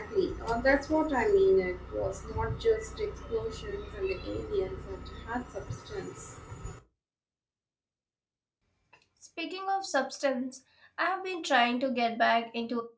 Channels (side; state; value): both; identical; correlation 1.00